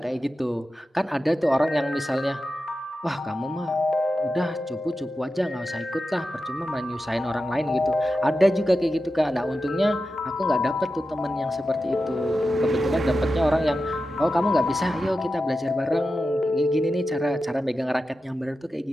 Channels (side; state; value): both; normal; correlation 0.91